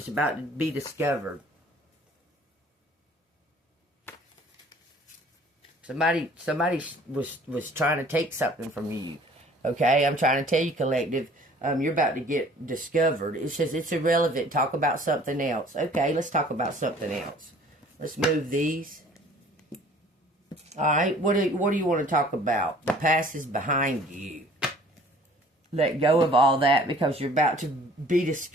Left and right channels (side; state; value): both; normal; correlation 0.52